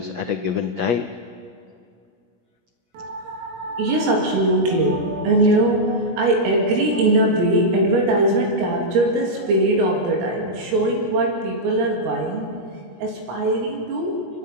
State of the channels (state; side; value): late; left; 17 ms